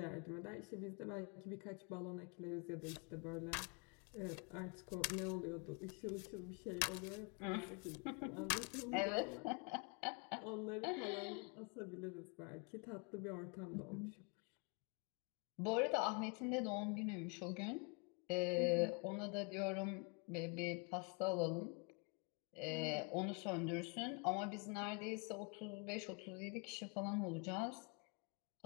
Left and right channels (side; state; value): right; quieter; 32.5 dB